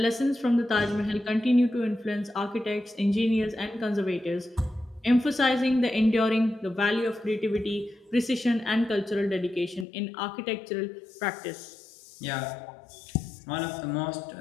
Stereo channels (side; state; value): right; drops out; at 9.9 s